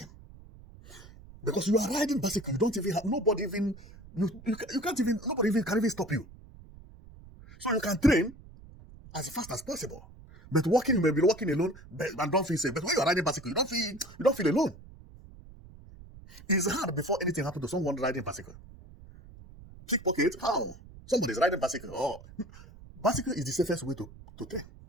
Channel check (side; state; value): right; noise; rumble, 19 dB below the sound